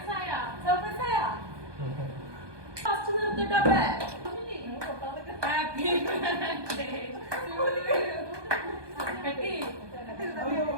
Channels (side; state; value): left; late; 1.2 ms